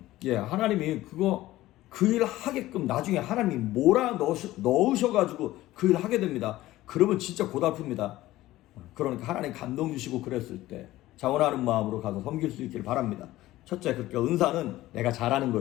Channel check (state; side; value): quieter; right; 16.3 dB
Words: 하나님이 그 일 하게끔 나중에 하나님이 넣으셔가지고 그 일 하게 됩니다. 그러면 진짜 고달픕니다. 그러니까 하나님 감동 주시고 그랬을 때 자원하는 마음으로 가서 섬길 수 있길 바랍니다. 첫째, 그러니까 은사는 내가 잘하는